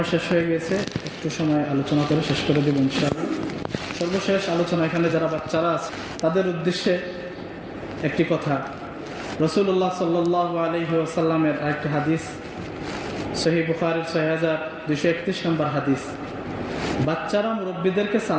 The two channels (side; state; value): both; identical; correlation 1.00